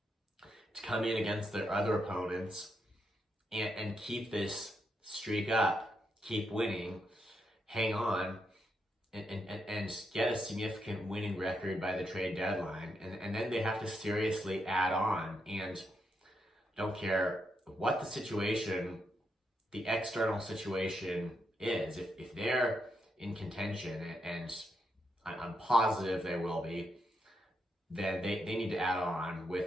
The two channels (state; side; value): normal; both; correlation 0.81